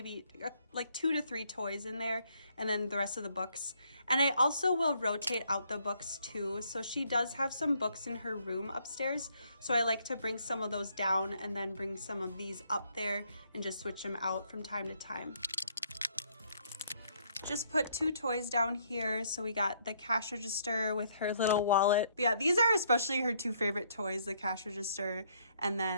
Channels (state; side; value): inverted; both; correlation -0.69